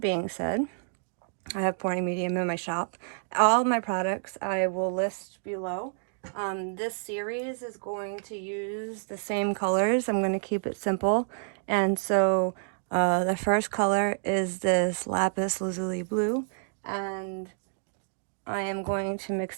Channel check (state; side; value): silent; left; digital silence